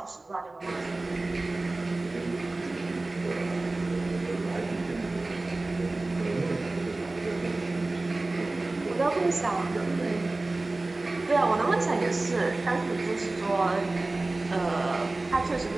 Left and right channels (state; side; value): quieter; left; 3.1 dB